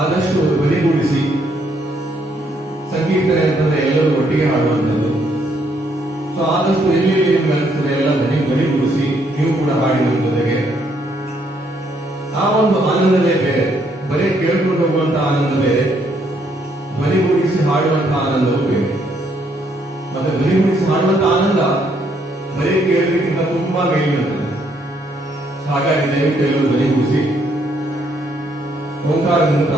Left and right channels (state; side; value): normal; both; correlation 0.71